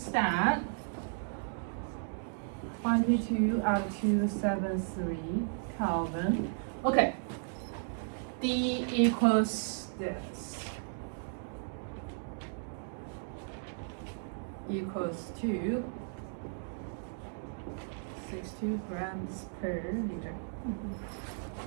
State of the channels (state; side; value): silent; left; digital silence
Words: that. 22 out of 273 Kelvin. Okay. D equals this. Equals to 62 grams per liter.